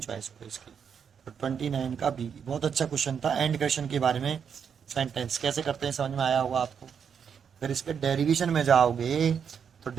हो इसकी, तो 29 का बी। बहुत अच्छा क्वेश्चन था एंड क्वेश्चन के बारे में, सेंटेंस कैसे करते हैं समझ में आया होगा आपको। अगर इसके डेरिवेशन में जाओगे, तो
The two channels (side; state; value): left; quieter; 7.2 dB